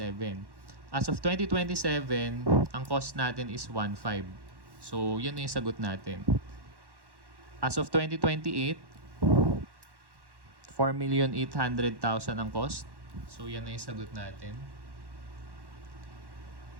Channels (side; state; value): left; late; 1.1 ms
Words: As of 2027, ang cost natin is 1.5. So yun na yung sagot natin. As of 2028, 4,800,000 ang cost. So yan na yung sagot natin.